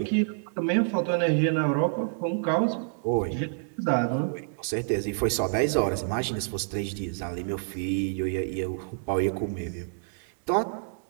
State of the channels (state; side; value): silent; left; digital silence